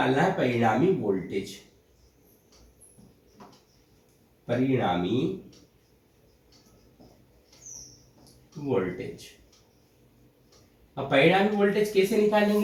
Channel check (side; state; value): both; identical; correlation 1.00